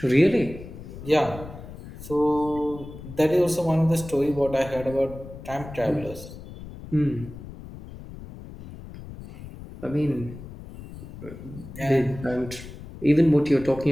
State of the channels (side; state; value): left; noise; rumble, 14 dB below the sound